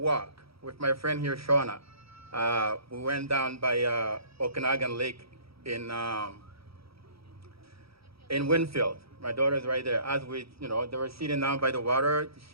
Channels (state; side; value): late; left; 0.76 ms